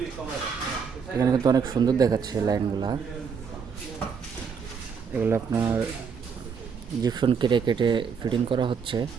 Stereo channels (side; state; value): left; quieter; 6.2 dB